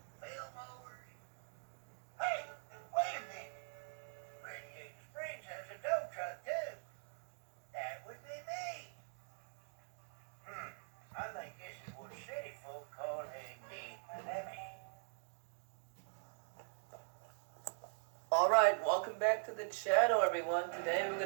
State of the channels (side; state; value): left; silent; digital silence